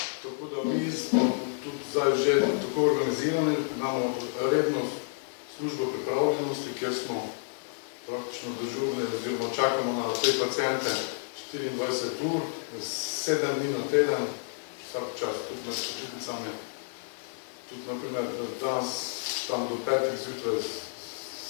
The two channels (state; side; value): silent; right; digital silence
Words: da mi smo tudi zdaj že tako organizirani, imamo redno službo pripravljenosti, kjer smo praktično dežurni oziroma čakamo na te paciente 24 ur, 7 dni na teden, vsak čas, tudi med počitnicami. Tudi, naprimer, danes tam do 5 zjutraj